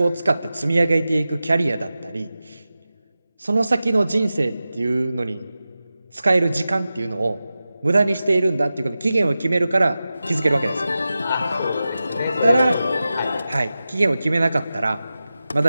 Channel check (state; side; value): inverted; both; correlation -0.94